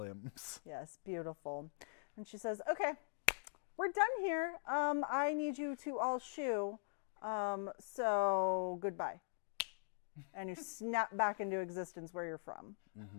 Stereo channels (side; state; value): right; silent; digital silence